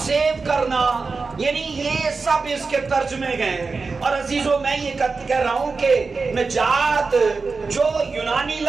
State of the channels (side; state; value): left; quieter; 4.4 dB